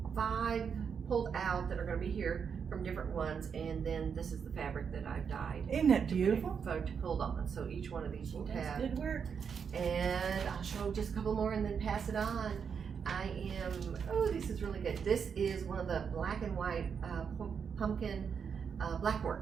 5 pulled out that are gonna be here from different ones, and then this is the fabric that I've dyed. Isn't that beautiful? Pulled on. So each one of these will have. Good work. And I'll show just a couple more and then pass it on. Oh, this is really good. This is one of the black and white pumpkin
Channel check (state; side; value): quieter; left; 6.7 dB